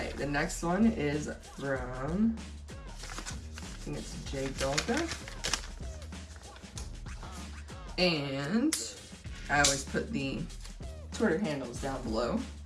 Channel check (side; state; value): both; identical; correlation 1.00